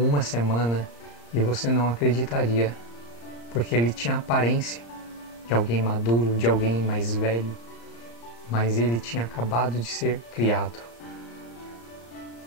semana. E você não acreditaria, porque ele tinha aparência de alguém maduro, de alguém mais velho, mas ele tinha acabado de ser criado.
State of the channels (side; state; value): right; late; 34 ms